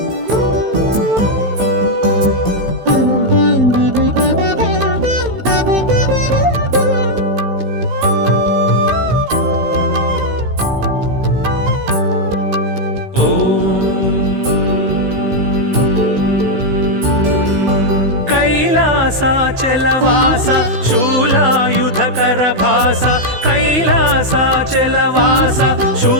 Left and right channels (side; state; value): left; late; 16 ms